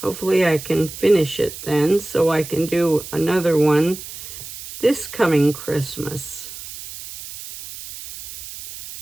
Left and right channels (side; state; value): right; noise; hiss, 12 dB below the sound